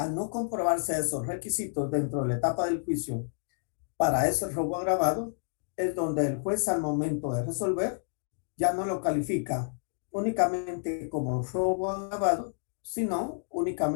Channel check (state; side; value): silent; right; digital silence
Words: no comprobarse esos requisitos dentro de la etapa del juicio para ese robo agravado, es donde el juez al momento de resolver ya no lo califica únicamente como robo agravado, sino